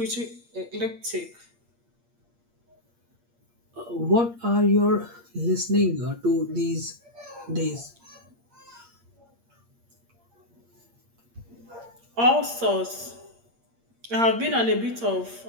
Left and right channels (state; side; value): late; left; 8.6 ms